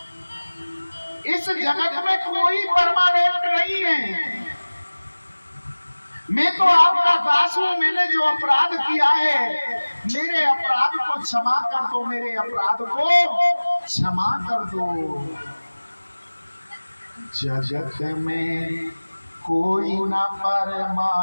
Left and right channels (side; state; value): both; inverted; correlation -1.00